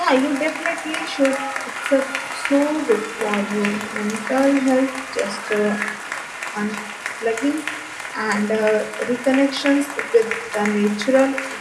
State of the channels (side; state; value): both; identical; correlation 1.00